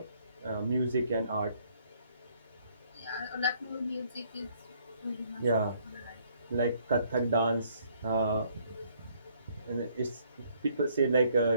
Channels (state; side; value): inverted; both; correlation -0.66